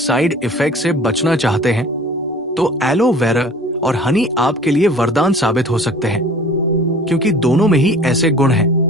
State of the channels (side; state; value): both; normal; correlation 0.46